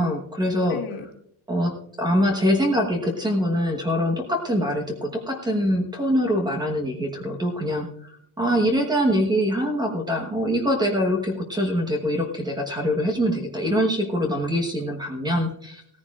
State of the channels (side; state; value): both; normal; correlation 0.60